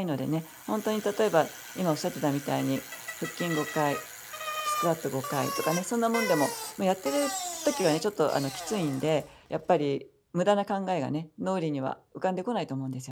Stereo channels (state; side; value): identical; both; correlation 1.00